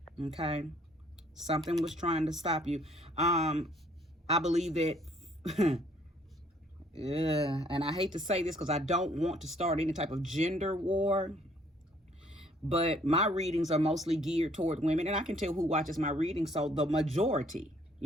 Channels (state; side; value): normal; both; correlation 0.62